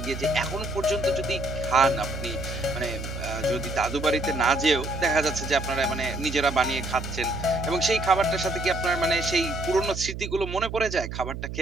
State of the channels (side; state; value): right; noise; hum, 7 dB below the sound